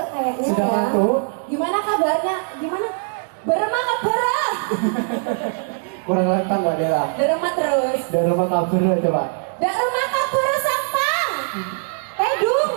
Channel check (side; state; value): left; silent; 65 dB below the other